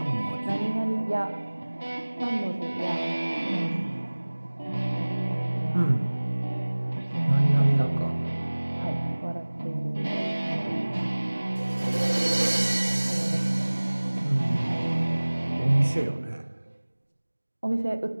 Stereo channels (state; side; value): inverted; both; correlation -1.00